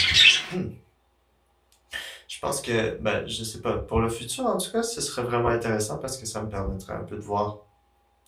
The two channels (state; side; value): identical; both; correlation 1.00